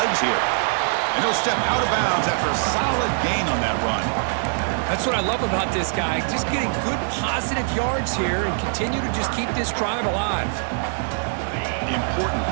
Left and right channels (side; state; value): left; silent; digital silence